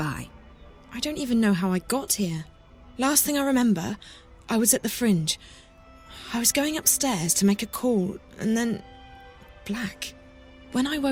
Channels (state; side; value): identical; both; correlation 1.00